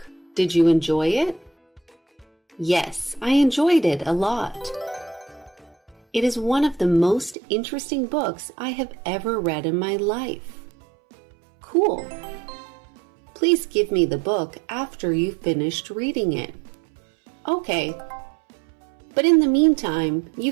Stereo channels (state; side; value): drops out; left; at 7.4 s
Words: Did you enjoy it? Yes, I enjoyed it a lot. It is one of the most interesting books I have ever read in my life. Cool. Please give me the book after you've finished reading it. Okay. But in the meantime, you